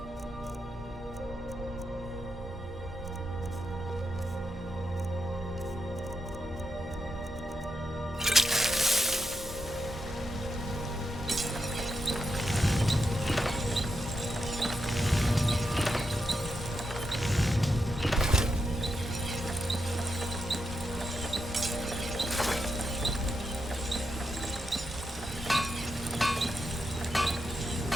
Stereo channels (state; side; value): normal; both; correlation 0.85